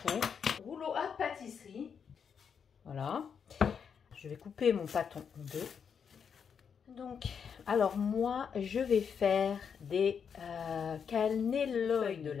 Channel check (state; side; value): quieter; right; 6.9 dB